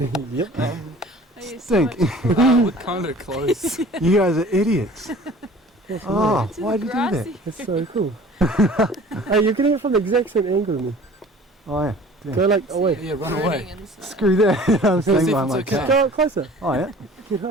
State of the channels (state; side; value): normal; both; correlation 0.47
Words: Yep. Stink. We're kind of close. You guys are idiots. Oh, why'd you do that? That's so cool. Hey, you're getting it from the exact same angle as me. Oh yeah. Go like away. Yeah, run away. Screw that. I'm staying by my okay. car. Go closer. Oh yeah. Get